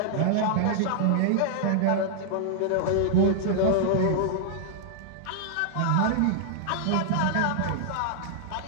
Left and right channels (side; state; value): both; different; correlation -0.01